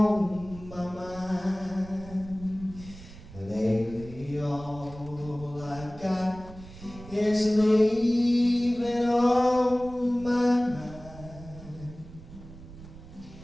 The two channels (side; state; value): right; noise; rumble, 17 dB below the sound